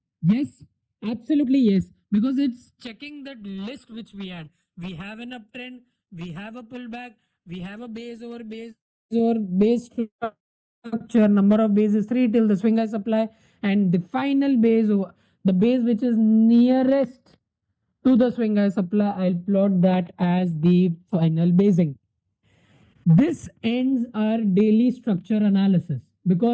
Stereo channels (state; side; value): identical; both; correlation 1.00